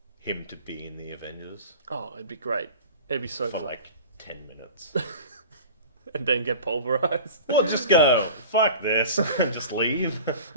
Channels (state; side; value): inverted; both; correlation -0.37